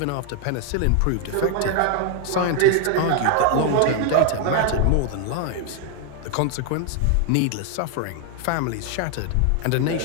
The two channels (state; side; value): different; both; correlation 0.00